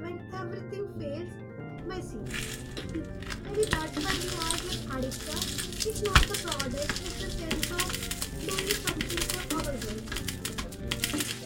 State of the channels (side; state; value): both; identical; correlation 1.00